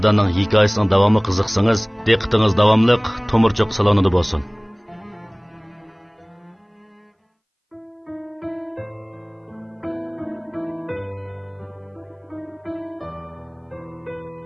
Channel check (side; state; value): both; identical; correlation 1.00